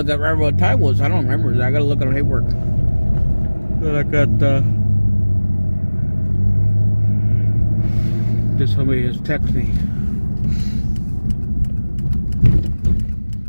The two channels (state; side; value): inverted; both; correlation -1.00